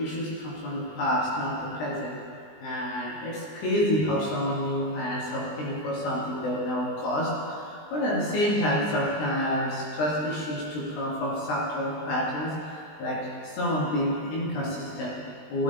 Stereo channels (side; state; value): right; late; 20 ms